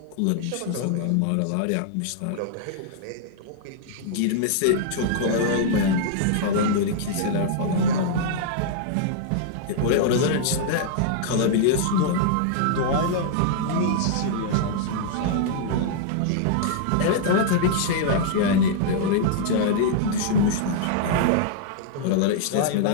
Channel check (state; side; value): different; both; correlation -0.01